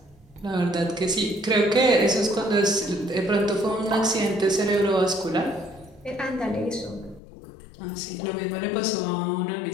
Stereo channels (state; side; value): drops out; right; at 7.2 s